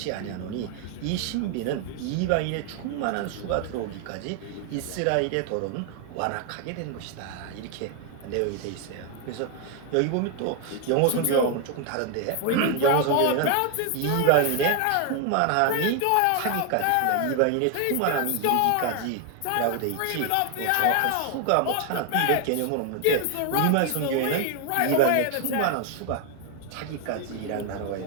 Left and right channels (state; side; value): different; both; correlation 0.01